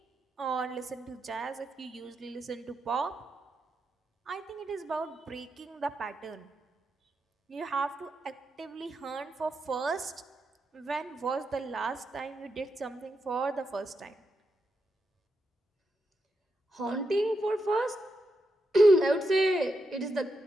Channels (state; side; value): normal; both; correlation 0.85